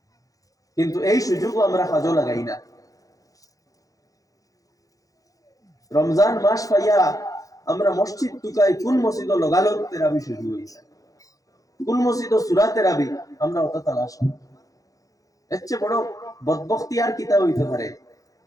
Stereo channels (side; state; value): right; late; 0.17 ms